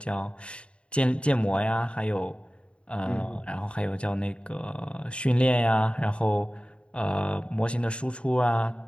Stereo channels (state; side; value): late; right; 0.057 ms